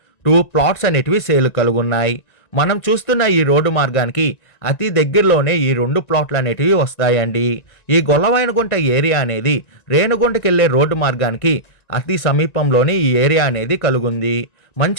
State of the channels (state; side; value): late; right; 1.9 ms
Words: 2 ప్లాట్స్ అనేటివి సేల్ కలుగున్నాయి. మనం చూస్తున్న ఈ రోడ్డు మార్గానికి అతి దగ్గరలోనే ఈ 2 ప్లాట్లు అనేటివి వస్తాయండి. ఈ గొల్లవైనగుంట ఏరియా అనేది రేణుగుంటకి వెళ్ళే రోడ్డు మార్గానికి అతి సమీపంలోనే ఈ ఏరియా అనేది కలుగుంది.